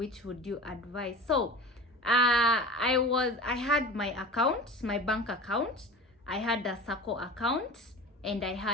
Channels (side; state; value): both; normal; correlation 0.36